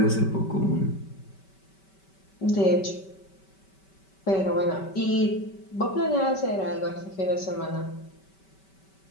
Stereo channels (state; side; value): late; right; 5.2 ms